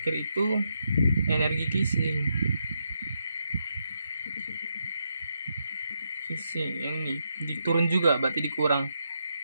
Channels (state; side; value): inverted; both; correlation -0.82